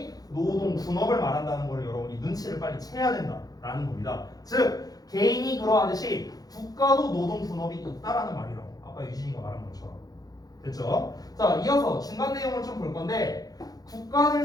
노동 분업을 말한다는 걸 여러분이 눈치를 빨리 채야 된다라는 겁니다. 즉 개인이 그러하듯이 국가도 노동 분업이 있다라는 말이라고. 아까 유진이가 말한 것처럼. 됐죠? 자, 이어서 중간 내용을 좀 볼 건데 국가들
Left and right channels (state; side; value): late; right; 0.18 ms